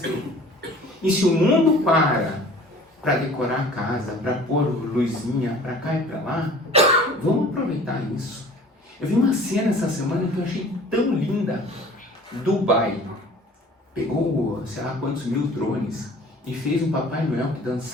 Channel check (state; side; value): normal; both; correlation 0.47